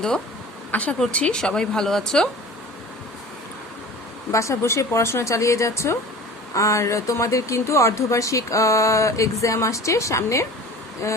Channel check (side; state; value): both; normal; correlation 0.40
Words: আশা করছি সবাই ভালো আছো, বাসা বসে পড়াশোনা চালিয়ে যাচ্ছ। আর তোমাদের কিন্তু অর্ধবার্ষিক এক্সাম আসছে সামনে।